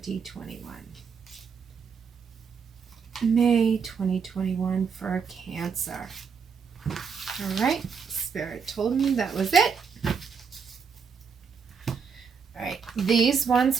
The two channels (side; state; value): left; quieter; 6.1 dB